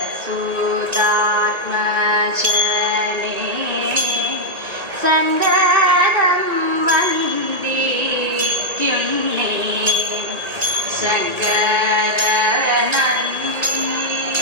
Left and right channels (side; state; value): left; late; 1.8 ms